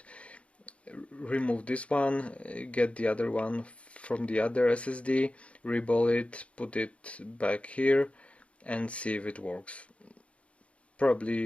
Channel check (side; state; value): right; late; 0.062 ms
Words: this one, get the other one from the other SSD, reball it, put it back here and see if it works.